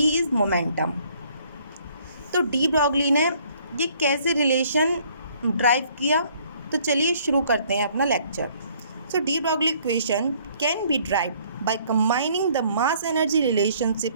is momentum. तो डी ब्रॉगली ने ये कैसे रिलेशन ड्राइव किया, तो चलिए शुरू करते हैं अपना lecture. So de Broglie equation can be derived by combining the mass energy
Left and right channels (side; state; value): both; inverted; correlation -0.61